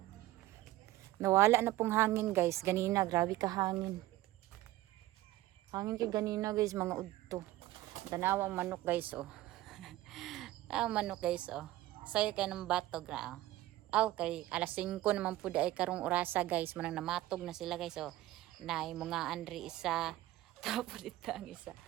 Nawala na pong hangin guys. Ganina, grabe ka hangin. Hangin ka ganina guys, mga udto. Tanawang manok guys oh. Tanawang manok guys oh. Sayo kay ng batog na oh. Aw kay alas 5 naman po ay karong orasa guys. Manang namatog na sila guys oh. Nay mga andri isa. Tapos dito ang isa.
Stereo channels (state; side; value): quieter; left; 16.2 dB